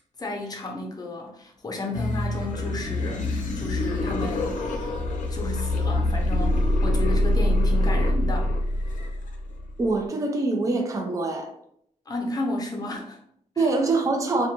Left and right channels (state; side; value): normal; both; correlation 0.76